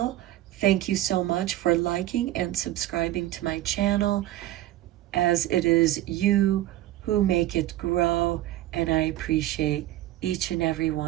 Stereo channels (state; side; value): quieter; left; 14.7 dB